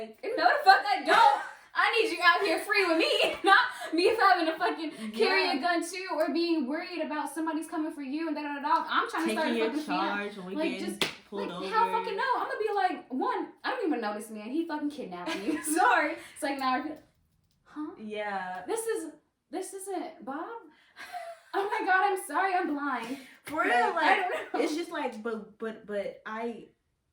no the fuck I don't. I need you out here free with me, not me having to fucking carry a gun too, or being worried about somebody's coming for you and da da da. I'm trying to start a fucking charge when we like, get pulled over. Hell fucking no. I'm gonna be like, one, I don't even know this man. He fucking kidnapped me. Sorry. It's like, now, huh? Yeah. This isn't Bob. Oh my god, I'm sorry, I'm blind. For real, like, I don't know. It's just like, but I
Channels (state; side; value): identical; both; correlation 1.00